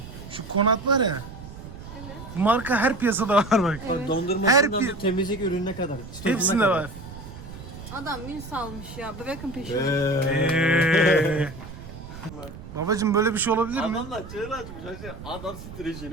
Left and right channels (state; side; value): noise; right; rumble, 13 dB below the sound